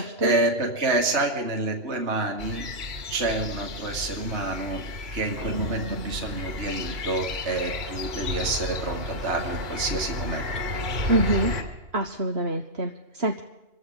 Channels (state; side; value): late; left; 2.9 ms